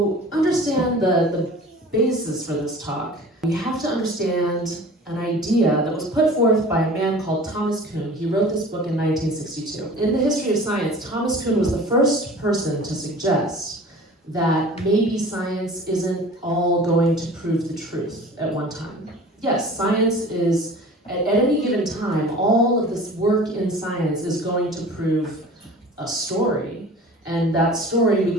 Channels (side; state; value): both; normal; correlation 0.42